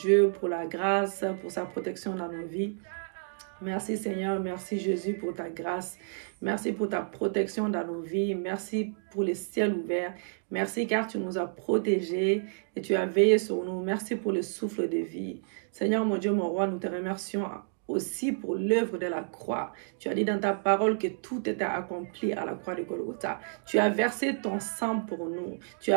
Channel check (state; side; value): silent; left; digital silence